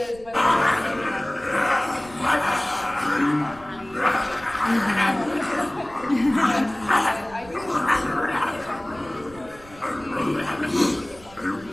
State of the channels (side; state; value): right; noise; rumble, 22 dB below the sound